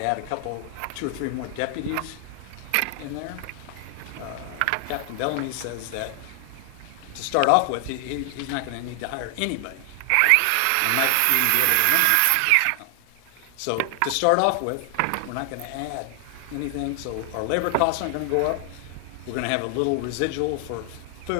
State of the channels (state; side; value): different; both; correlation 0.00